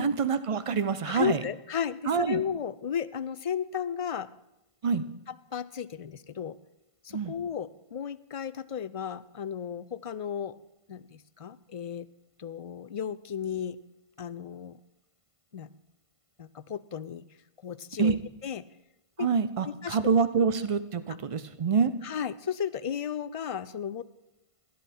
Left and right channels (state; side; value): late; left; 1.5 ms